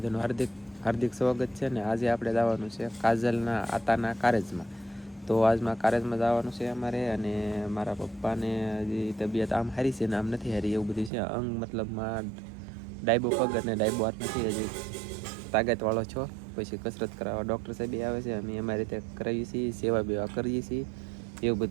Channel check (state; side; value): drops out; left; at 11.1 s